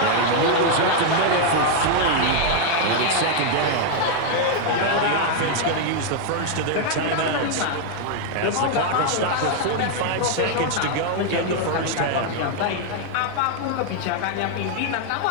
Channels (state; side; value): different; both; correlation 0.00